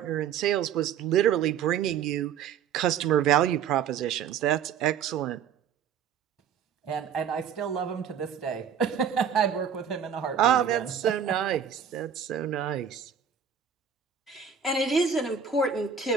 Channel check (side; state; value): left; quieter; 7.8 dB